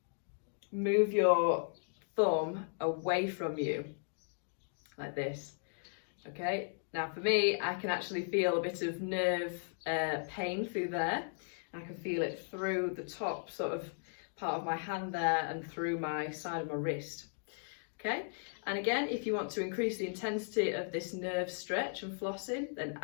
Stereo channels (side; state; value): right; silent; digital silence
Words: move your thumb away from you like this. Okay, now for me, I can actually feel a bit of nerve pain through there. I can feel it through the top sort of part of my hand there and through my side of my wrist. Okay, and again, if you want to increase the intensity of this nerve stretch and flossing, then